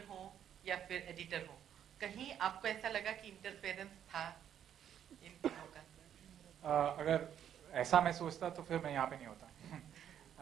हो या फिर एडिटर हो। कहीं आपको ऐसा लगा कि इंटरफेरेंस था इन तीनों का? अगर ऐसा मैं सोचता तो फिर मैं यहाँ पे नहीं होता।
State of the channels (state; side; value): quieter; left; 9.6 dB